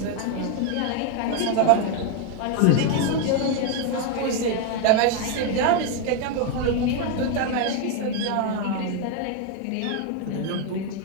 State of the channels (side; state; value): both; different; correlation 0.01